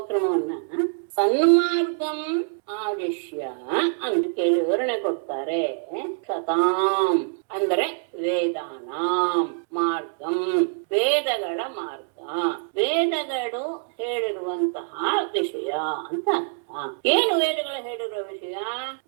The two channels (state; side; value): silent; left; digital silence